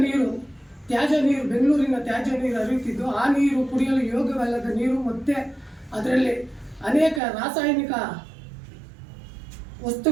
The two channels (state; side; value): drops out; left; at 7.2 s